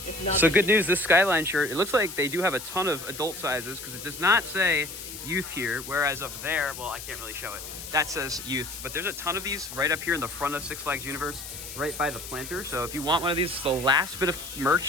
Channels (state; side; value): noise; left; hiss, 10 dB below the sound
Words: So good news, this Skyline shirt, it looks like they do have a ton of adult sizes because it does not say youth here, whereas up there, well, I can't really show it. That says youth, but there's a ton of these right up here in the front of Six Flags Universe, right by the planter. So if you want one of these, it's the last bit of